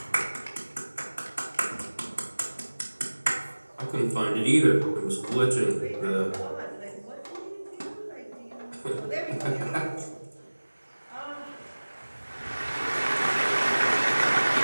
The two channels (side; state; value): both; inverted; correlation -1.00